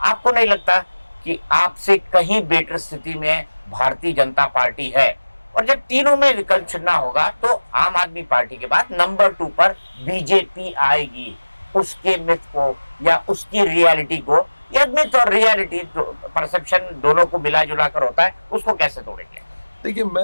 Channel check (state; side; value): inverted; both; correlation -1.00